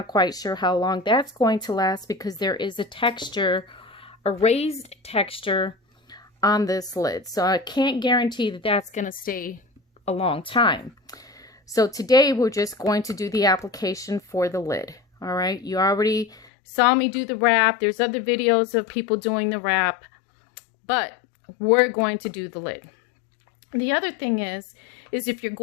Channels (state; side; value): drops out; right; at 16.4 s